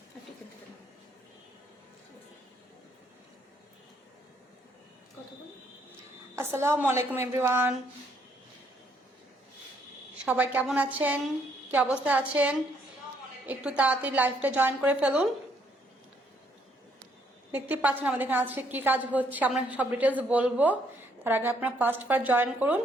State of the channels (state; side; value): normal; both; correlation 0.70